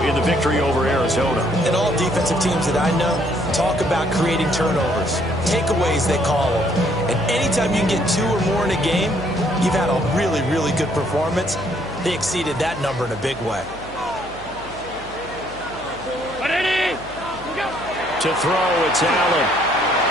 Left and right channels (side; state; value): right; noise; hum, 19 dB below the sound